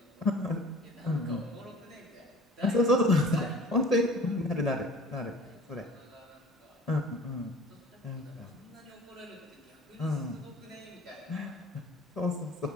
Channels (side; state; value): both; normal; correlation 0.45